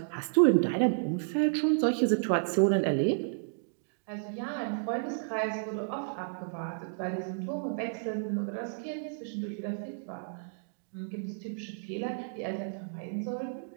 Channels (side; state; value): left; silent; digital silence